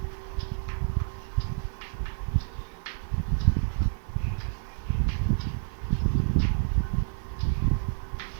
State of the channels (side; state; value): left; silent; digital silence